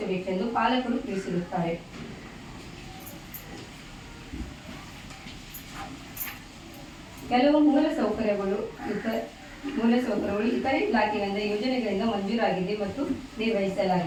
ಪಾಲಕರು ತಿಳಿಸಿರುತ್ತಾರೆ. ಕೆಲವು ಮೂಲಸೌಕರ್ಯಗಳು ಇತರೆ ಇಲಾಖೆಗಳಿಂದ ಯೋಜನೆಗಳಿಂದ ಮಂಜೂರಾಗಿದೆ ಮತ್ತು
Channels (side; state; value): both; identical; correlation 1.00